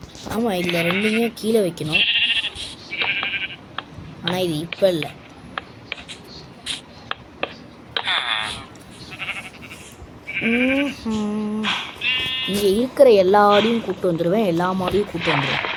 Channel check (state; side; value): identical; both; correlation 1.00